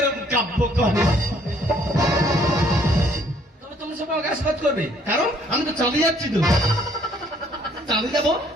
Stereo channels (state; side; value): normal; both; correlation 0.62